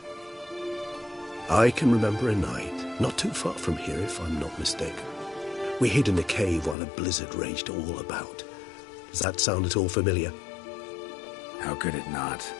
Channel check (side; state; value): right; drops out; at 6.8 s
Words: I can remember a night, not too far from here if I'm not mistaken. We hid in a cave while a blizzard raged all about. Does that sound at all familiar? How could it not?